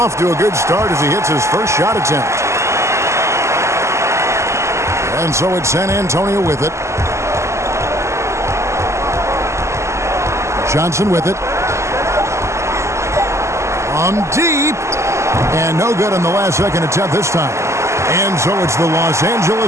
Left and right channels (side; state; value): left; late; 0.13 ms